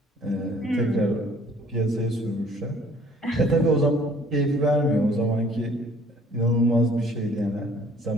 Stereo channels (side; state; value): both; normal; correlation 0.56